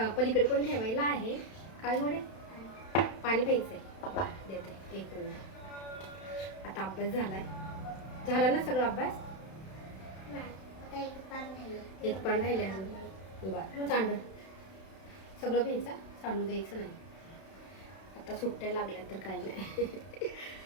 पलीकडे पण ठेवायला आहे. काय थोडे पाणी प्यायचं आहे, देते 1 मिनिट. आता अभ्यास झाला ना सगळा अभ्यास? एक पान राहिले अजून. बरं, सांड सगळं प्यायचं, सांडू द्यायचं नाही. आता सुट्ट्या लागल्या तर काही नाही.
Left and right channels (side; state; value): right; late; 31 ms